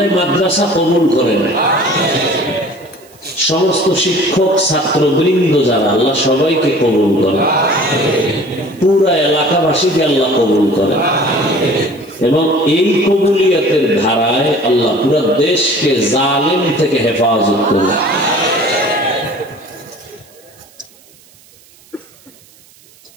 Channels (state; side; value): noise; right; hiss, 27 dB below the sound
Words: মাদ্রাসা কবুল করেন। সমস্ত শিক্ষক, ছাত্রবৃন্দ যারা, আল্লাহ সবাইকে কবুল করেন। পুরা এলাকাবাসীকে আল্লাহ কবুল করেন এবং এই কবুলিয়তের ধারায় আল্লাহ পুরা দেশকে জালিম থেকে হেফাজত করেন।